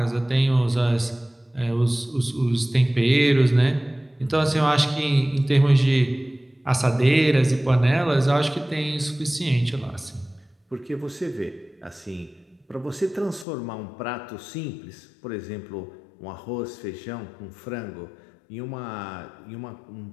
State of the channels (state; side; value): drops out; right; at 13.5 s